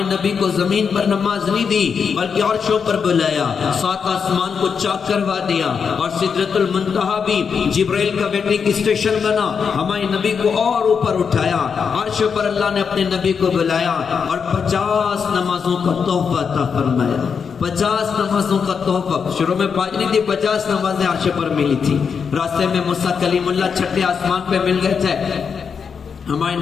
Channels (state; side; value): quieter; right; 6.3 dB